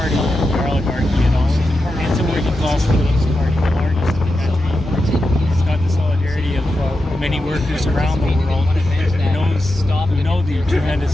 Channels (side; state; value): both; normal; correlation 0.89